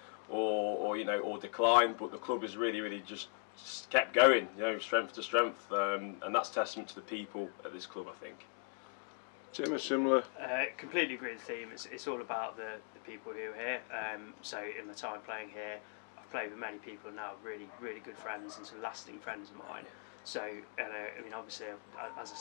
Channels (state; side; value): silent; right; 52 dB below the other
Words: or you know, or decline, but the club has really just kept going, you know, strength to strength, and that's testament to the people at this club, I think. Tim, a similar? Completely agree with the theme. It's all about the people who are here. So in my time playing here, I've played with many people now, really good friends and some lasting friends of mine. So, I mean, obviously, as I